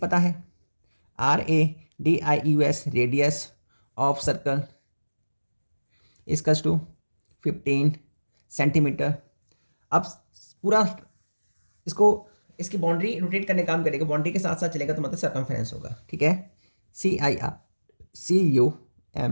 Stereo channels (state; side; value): inverted; both; correlation -1.00